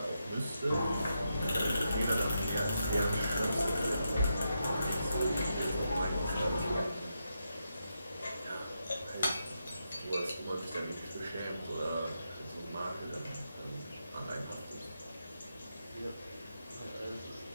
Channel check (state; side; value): inverted; both; correlation -0.84